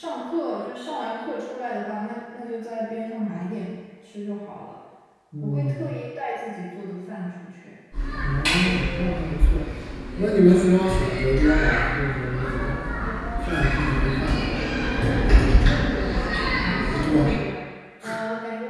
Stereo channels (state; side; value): identical; both; correlation 1.00